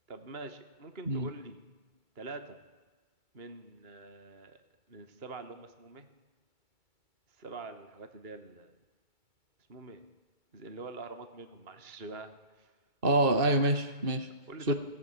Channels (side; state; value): left; late; 2.3 ms